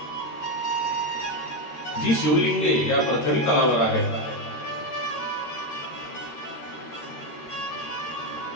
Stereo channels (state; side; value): late; right; 13 ms